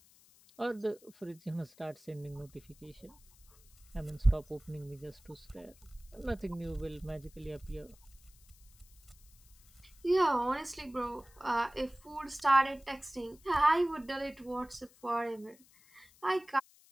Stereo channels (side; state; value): left; noise; hiss, 27 dB below the sound